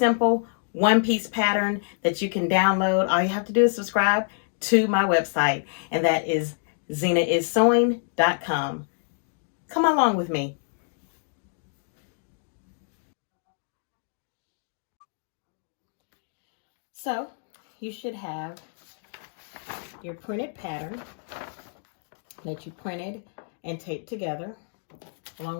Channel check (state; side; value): silent; right; digital silence